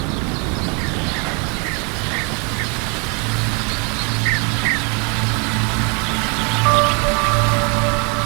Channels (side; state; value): left; quieter; 33.6 dB